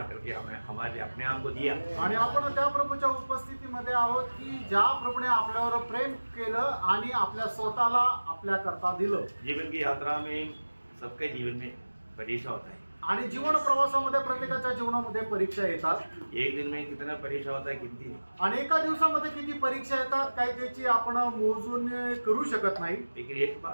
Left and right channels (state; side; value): inverted; both; correlation -1.00